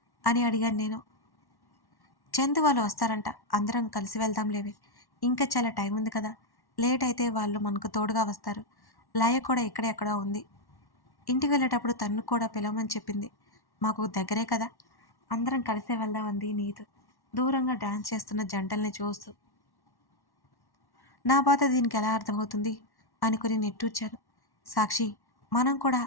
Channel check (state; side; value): late; right; 1.1 ms